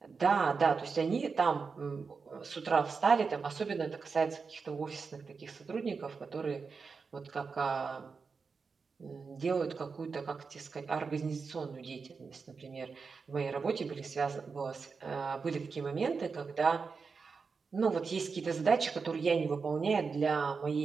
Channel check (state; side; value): quieter; left; 5.0 dB